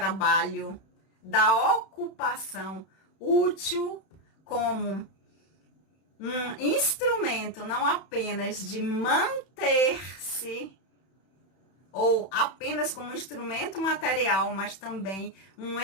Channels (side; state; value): right; late; 31 ms